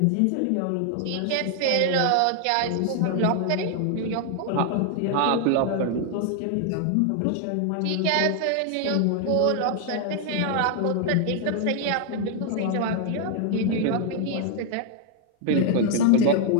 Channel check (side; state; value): both; different; correlation 0.00